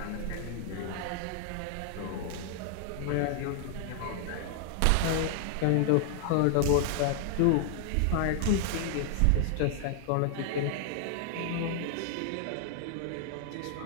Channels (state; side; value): different; both; correlation 0.00